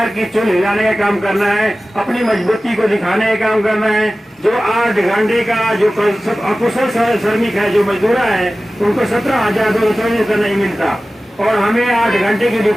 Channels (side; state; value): both; normal; correlation 0.96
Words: की चुन हिलाने का काम करना है, अपनी मजबूती को दिखाने का काम करना है। जो 8 घंटे का जो अकुशल श्रमिक है, जो मजदूरा है, उनको 17,234 नहीं मिलता और हमें 8 घंटे की